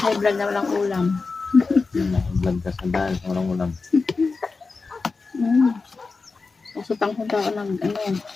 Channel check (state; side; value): quieter; right; 4.2 dB